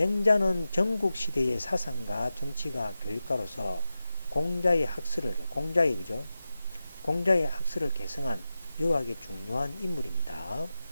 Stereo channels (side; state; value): both; inverted; correlation -0.93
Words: 전국시대의 사상가, 정치가, 교육가로서 그죠? 공자의 학설을 계승한 유학의 중요한 인물입니다.